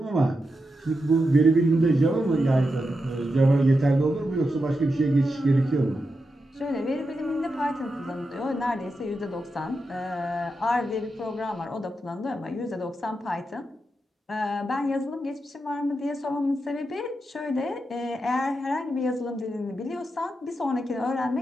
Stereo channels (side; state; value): both; normal; correlation 0.87